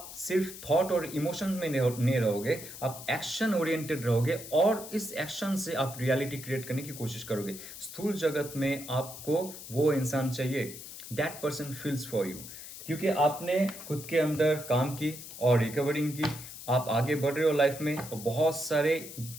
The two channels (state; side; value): noise; left; hiss, 12 dB below the sound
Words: सिर्फ थॉट और इमोशन में नहीं रहोगे, आप एक्शन ओरिएंटेड रहोगे, और इस एक्शन से आप रियलिटी क्रिएट करने की कोशिश करोगे। स्थूल जगत में आपको वो इंसान चाहिए, that person feels for you, क्योंकि आपने खुद के अंदर काम की और रिकवरिंग की, आप आगे बढ़ रहे हो लाइफ में, और बहुत सारे